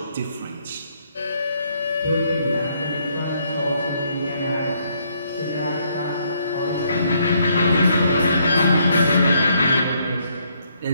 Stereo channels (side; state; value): both; inverted; correlation -0.71